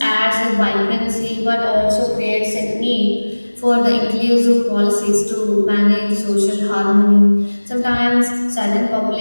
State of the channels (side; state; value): both; inverted; correlation -1.00